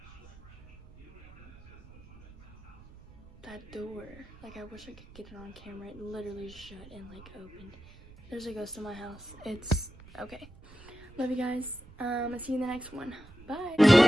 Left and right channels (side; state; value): right; noise; rumble, 20 dB below the sound